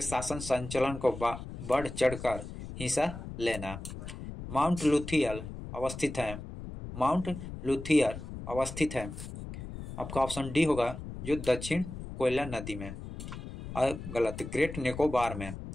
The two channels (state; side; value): noise; left; rumble, 10 dB below the sound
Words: शासन संचालन को बढ़ चढ़कर हिस्सा लेना। माउंट लुथियर अवस्थित है। आपका ऑप्शन डी होगा जो दक्षिण कोयला नदी में। गलत। ग्रेट निकोबार में।